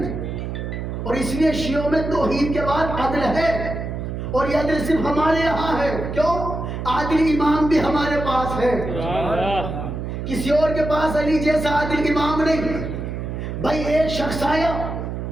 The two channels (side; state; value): right; noise; hum, 5 dB below the sound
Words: اور اس لیے شیعوں میں توحید کے بعد عدل ہے، اور یہ عدل صرف ہمارے یہاں ہے، کیوں؟ عادل امام بھی ہمارے پاس ہے، کسی اور کے پاس علی جیسا عادل امام نہیں۔ بھائی ایک شخص آیا